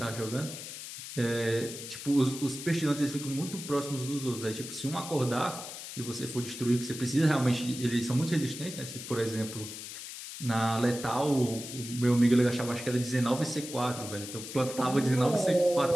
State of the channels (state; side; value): noise; left; hiss, 10 dB below the sound